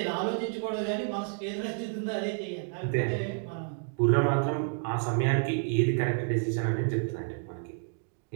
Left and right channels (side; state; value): left; silent; 56 dB below the other